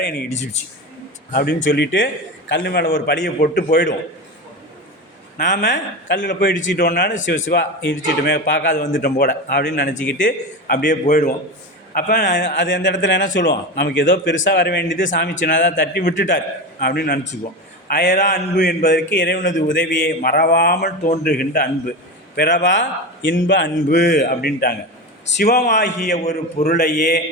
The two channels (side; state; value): both; normal; correlation 0.23